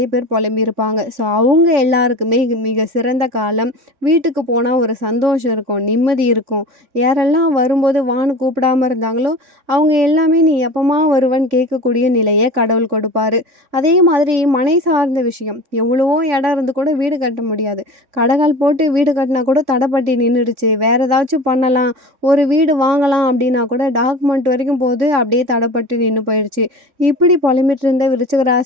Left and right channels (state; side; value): late; left; 3.6 ms